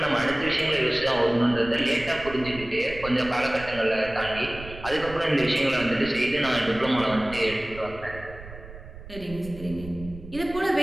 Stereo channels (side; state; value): right; noise; rumble, 15 dB below the sound